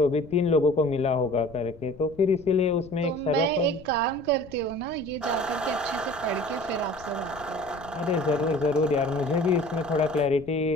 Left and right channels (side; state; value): left; noise; rumble, 20 dB below the sound